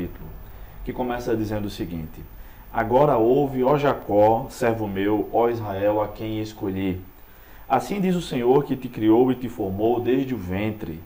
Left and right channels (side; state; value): both; identical; correlation 1.00